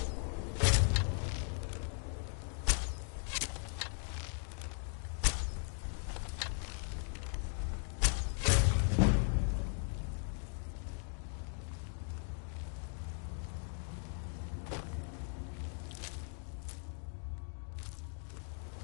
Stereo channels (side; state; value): right; silent; 52 dB below the other